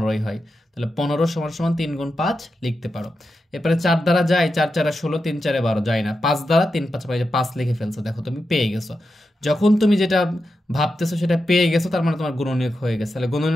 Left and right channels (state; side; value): normal; both; correlation 0.88